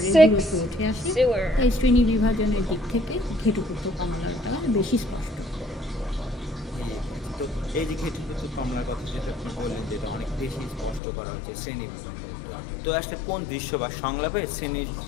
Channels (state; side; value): drops out; right; at 11.0 s